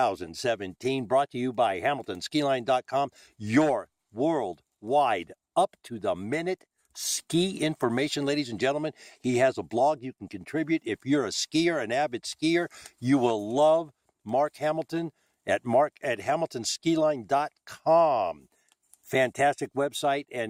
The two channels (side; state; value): both; identical; correlation 1.00